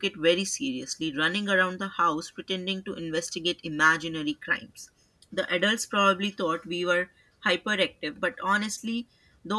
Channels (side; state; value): both; identical; correlation 1.00